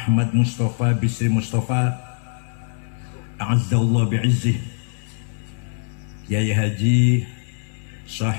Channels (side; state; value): right; silent; 64 dB below the other